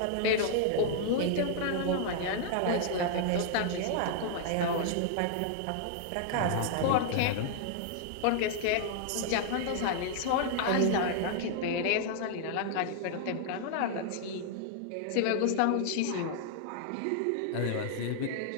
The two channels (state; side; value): different; both; correlation -0.01